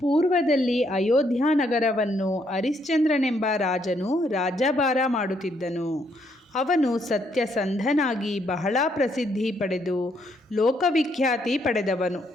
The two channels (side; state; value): both; normal; correlation 0.72